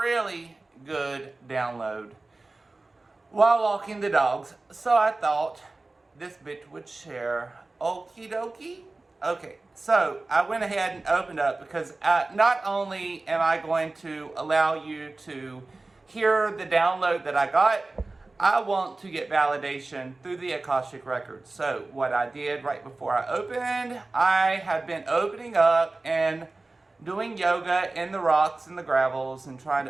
good download while walking the dogs. So I thought this bitch would share. Okie dokie. Okay, so I went ahead and opened up because not only am I going to allow you to hear the download that I got, I want to get validation through the Akashic Records. So what I did right before I opened, I have been opening up and doing yoga in the rocks and the gravels and trying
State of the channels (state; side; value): quieter; left; 3.3 dB